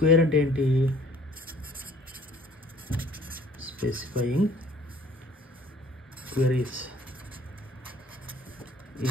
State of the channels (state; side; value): normal; both; correlation 0.56